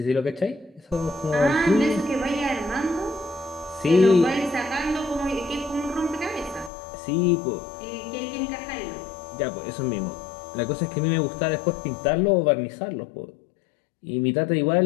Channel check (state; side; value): drops out; right; at 6.7 s